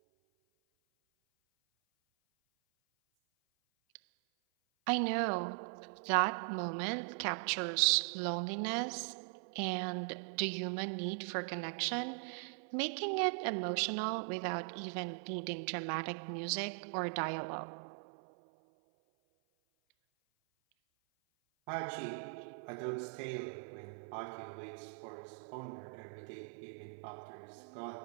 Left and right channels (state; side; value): silent; left; 51 dB below the other